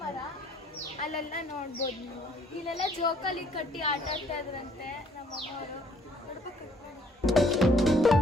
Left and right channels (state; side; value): normal; both; correlation 0.62